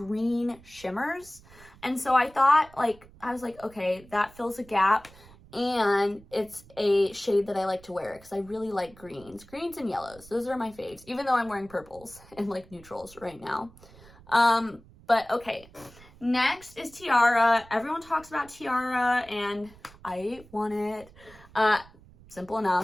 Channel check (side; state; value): right; noise; rumble, 23 dB below the sound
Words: shimmers. And so I thought, like, I was like, okay, that fills a gap, and it's a shade that I like to wear because I really like greens and yellows. Those are my faves, even though I'm wearing purples and like neutrals right now. But okay. Next is Tiara. Everyone talks about Tiara and I want it. Simple